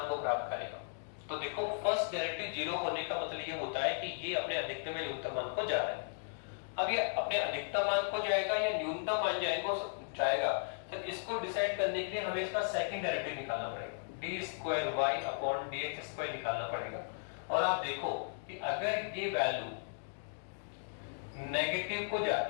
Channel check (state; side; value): silent; right; digital silence